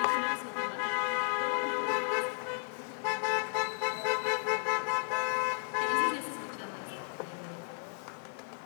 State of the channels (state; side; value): silent; right; 55 dB below the other